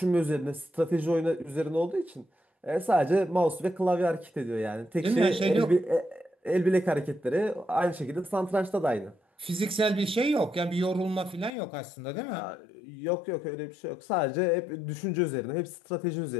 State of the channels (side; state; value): right; drops out; at 11.5 s